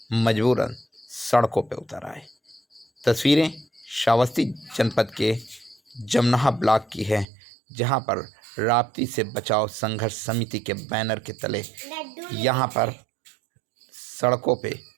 मजबूरन सड़कों पर उतर आए। तस्वीरें श्रावस्ती जनपद के जमनाहा ब्लॉक की है, जहां पर राप्ती से बचाव संघर्ष समिति के बैनर के तले यहां पर सड़कों पे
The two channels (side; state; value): left; drops out; at 7.2 s